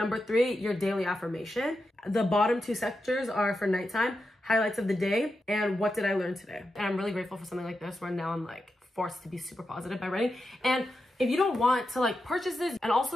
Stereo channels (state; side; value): normal; both; correlation 0.88